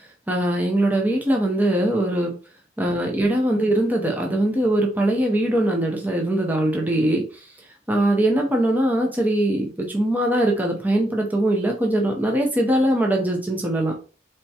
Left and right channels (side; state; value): both; normal; correlation 0.79